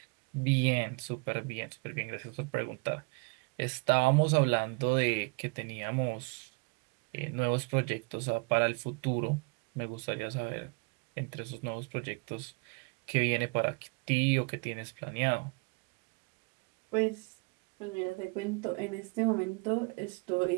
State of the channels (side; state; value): left; quieter; 32.8 dB